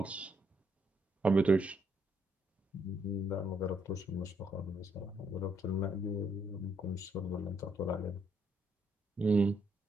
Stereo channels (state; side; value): normal; both; correlation 0.74